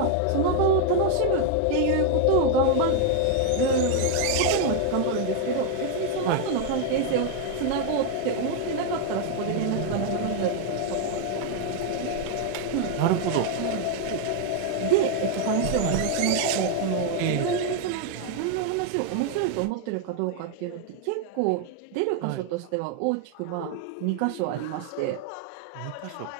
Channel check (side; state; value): both; different; correlation 0.00